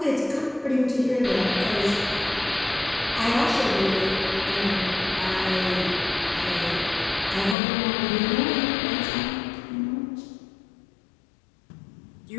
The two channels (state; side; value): drops out; right; at 7.6 s